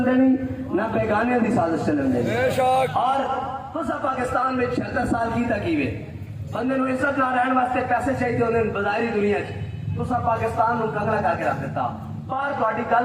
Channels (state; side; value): identical; both; correlation 1.00